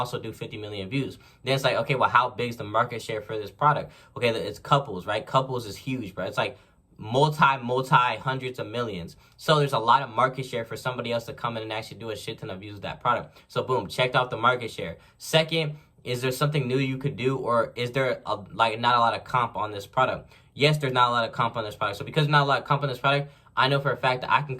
do 50 million views. Then it's like, okay, well, how big is the market share for this product? Okay, it's couples, right? Couples is huge, bro. It's like multi hundreds of millions. So there's a lot of market share for somebody else to come in and actually do a shit ton of views with that product. So boom, checked off the market share. Second, is there something new you could do, or is there not a lot of comp on this product? Yes, there's not a lot of comp on this product. So because there's not a lot of comp on this product, I know for a fact that I can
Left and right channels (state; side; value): identical; both; correlation 1.00